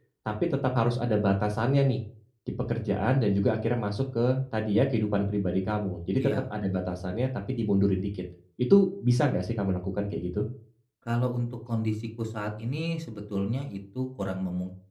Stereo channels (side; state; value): both; identical; correlation 1.00